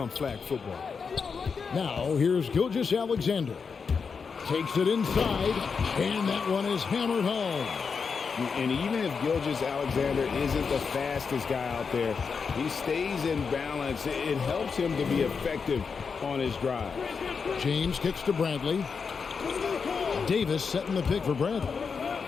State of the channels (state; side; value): quieter; right; 5.6 dB